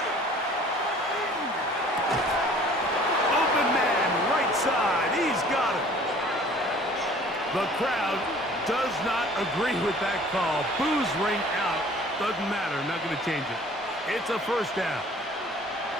Open man, right side. He's got it. The crowd does not agree with that call. Boos ring out. Doesn't matter. Not going to change it. It's a 1st down.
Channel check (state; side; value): normal; both; correlation 0.51